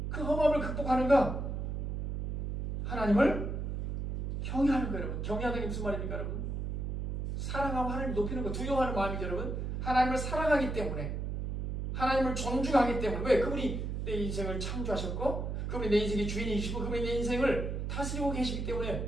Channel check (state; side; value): noise; right; hum, 3 dB below the sound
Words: 그 허무함을 극복하는가? 하나님을 경외하는 거예요 여러분. 경외하는 게 무슨 말입니까 여러분? 사랑하고 하나님을 높이는 거, 두려워하는 마음이죠 여러분. 하나님을 사랑하기 때문에, 하나님을 존중하기 때문에. 왜? 그분이 내 인생을 창조하셨고 그분이 내 인생의 주인이시고 그분이 내 인생을 다스리고 계시기